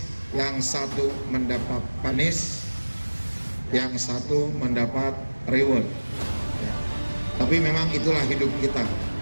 yang satu mendapat panis, yang satu mendapat reward ya. Tapi memang itulah hidup kita.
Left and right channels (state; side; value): inverted; both; correlation -1.00